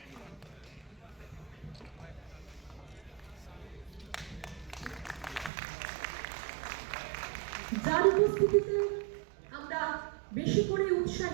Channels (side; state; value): left; drops out; at 5.5 s